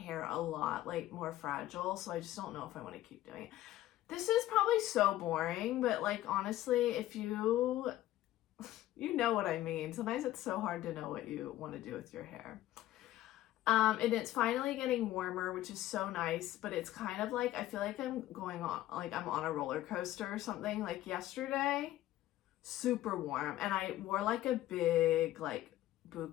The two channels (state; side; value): quieter; right; 14.6 dB